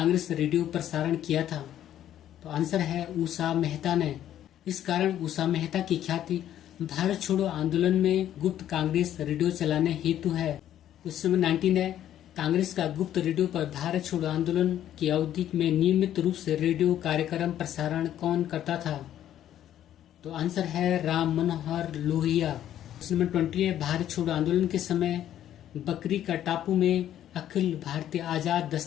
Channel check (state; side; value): quieter; right; 11.4 dB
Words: रेडियो प्रसारण किया था। तो आंसर है उषा मेहता ने। इस कारण उषा मेहता की ख्याति भारत छोड़ो आंदोलन में गुप्त कांग्रेस रेडियो चलाने हेतु है। क्वेश्चन नंबर 19 है, कांग्रेस का गुप्त रेडियो पर भारत छोड़ो आंदोलन की अवधि में नियमित रूप से रेडियो कार्यक्रम प्रसारण कौन करता था। तो आंसर है राम मनोहर लोहिया। क्वेश्चन नंबर 20 है, भारत छोड़ो आंदोलन के समय बकरी का टापू में अखिल भारतीय आजाद